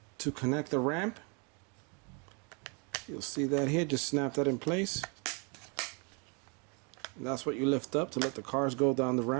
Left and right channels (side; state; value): left; quieter; 34.3 dB